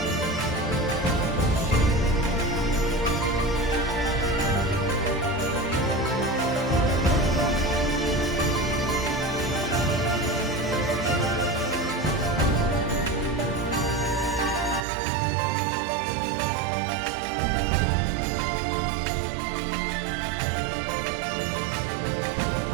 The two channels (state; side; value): drops out; left; at 14.9 s